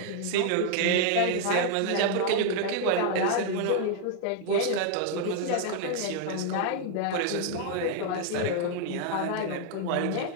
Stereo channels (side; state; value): both; different; correlation 0.00